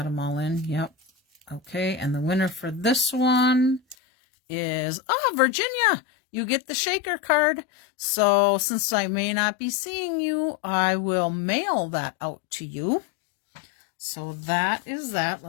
them all in. Yep. Okay, and the winner for this one is, Virginia, you get the shaker card. So since I may not be seeing you, I will mail that out to you. So that is that.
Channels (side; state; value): right; drops out; at 4.0 s